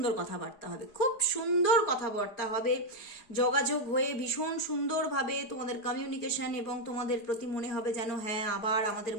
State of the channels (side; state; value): right; late; 4.9 ms